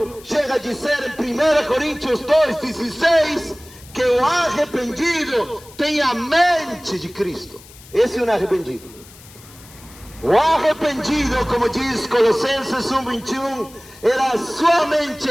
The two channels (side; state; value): left; noise; hiss, 22 dB below the sound